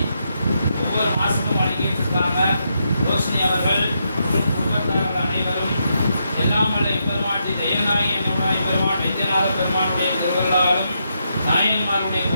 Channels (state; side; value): inverted; both; correlation -0.81